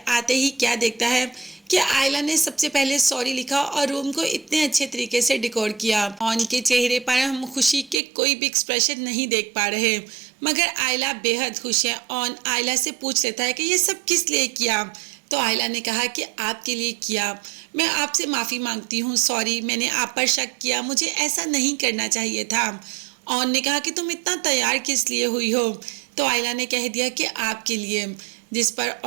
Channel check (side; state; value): left; drops out; at 8.0 s